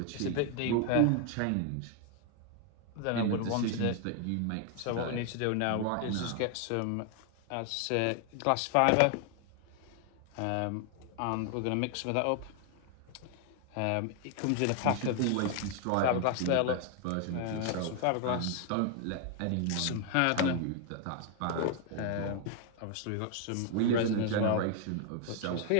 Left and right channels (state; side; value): different; both; correlation 0.00